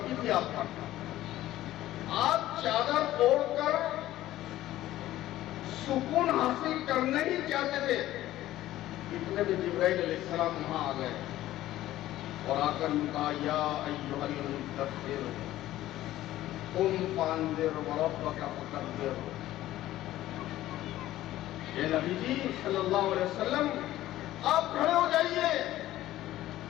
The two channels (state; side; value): quieter; right; 14.7 dB